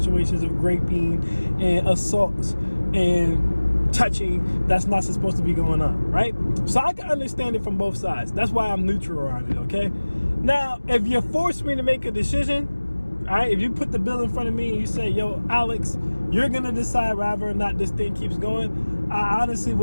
of raping and assaults and touching that's not supposed to be going on, right? So I can understand it from both sides. That's why I'm neutral on it, okay? Now, if you force me to make a decision, all right, if you put the bill in front of me and you say, yo, Alex, you're going to decide whether or not this thing keeps going, I honestly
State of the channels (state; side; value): inverted; both; correlation -1.00